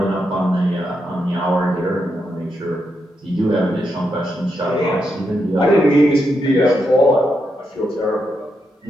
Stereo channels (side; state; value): both; normal; correlation 0.83